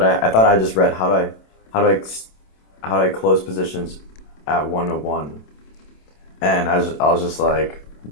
I thought I just read how do how do I close positions at 101? And I was just like,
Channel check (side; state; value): right; late; 27 ms